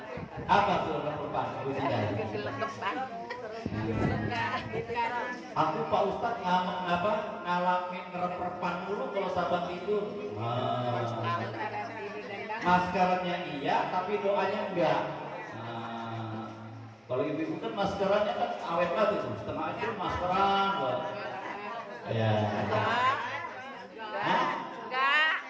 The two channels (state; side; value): identical; both; correlation 1.00